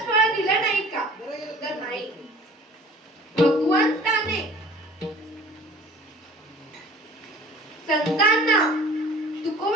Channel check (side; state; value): both; normal; correlation 0.47